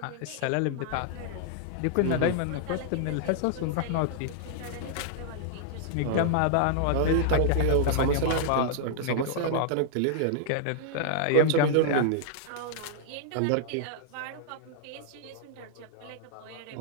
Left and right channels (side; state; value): both; different; correlation -0.01